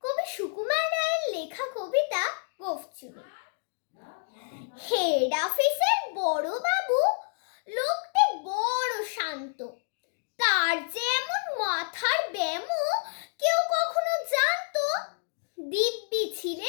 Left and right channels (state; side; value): silent; right; digital silence